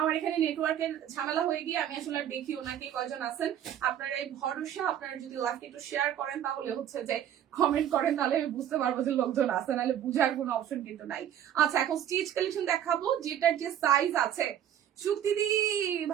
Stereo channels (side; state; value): left; quieter; 10.4 dB